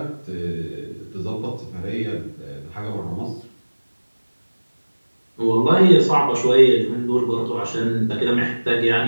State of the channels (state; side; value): inverted; both; correlation -1.00